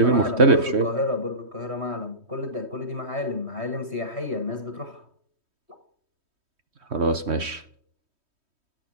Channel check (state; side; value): late; left; 3.2 ms